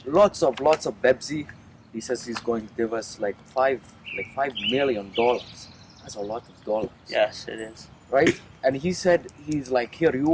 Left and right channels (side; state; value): both; identical; correlation 1.00